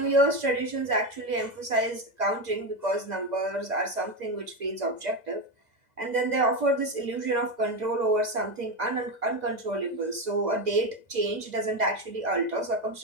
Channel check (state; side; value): late; left; 2.0 ms